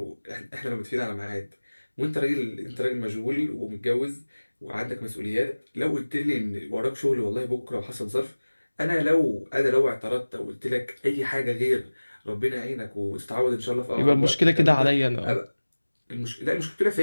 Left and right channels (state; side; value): inverted; both; correlation -1.00